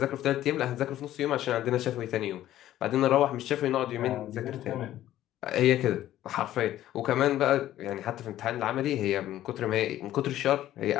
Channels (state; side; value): quieter; right; 13.2 dB